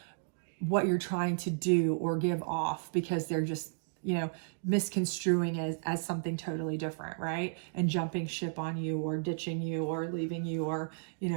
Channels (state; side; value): silent; left; digital silence